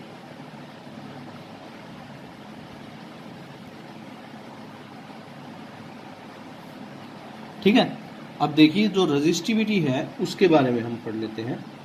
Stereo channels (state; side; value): identical; both; correlation 1.00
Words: ठीक है, अब देखिए जो रेजिस्टिविटी है उसके बारे में हम पढ़ लेते हैं।